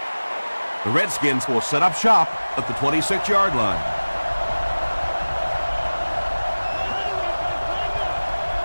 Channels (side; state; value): both; inverted; correlation -1.00